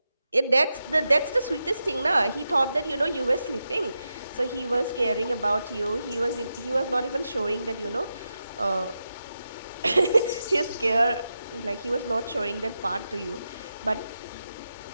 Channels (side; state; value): both; inverted; correlation -0.89